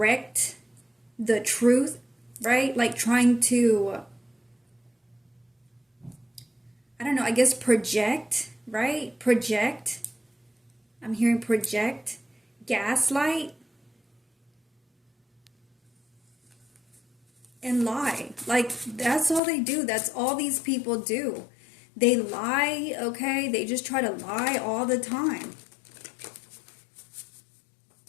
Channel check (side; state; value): right; drops out; at 19.4 s